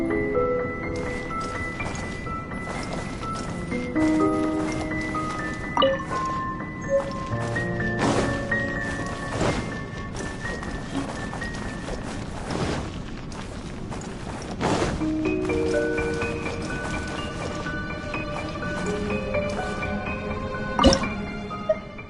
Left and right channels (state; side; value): identical; both; correlation 1.00